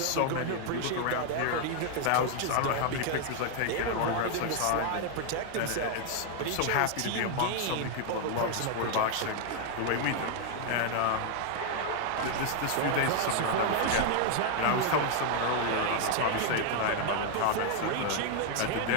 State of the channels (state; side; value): different; both; correlation 0.00